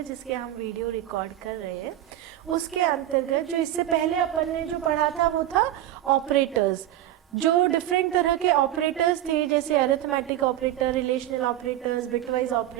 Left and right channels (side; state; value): left; quieter; 13.0 dB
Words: जिसके हम वीडियो रिकॉर्ड कर रहे हैं उसके अंतर्गत जो इससे पहले अपन ने जो पढ़ा था वो था ऑपरेटर्स। जो डिफरेंट तरह के ऑपरेटर्स थे जैसे arithmetic operator, relational operators, bitwise